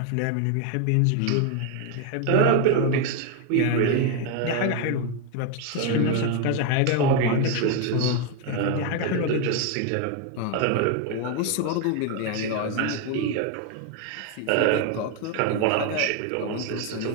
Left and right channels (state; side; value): different; both; correlation 0.01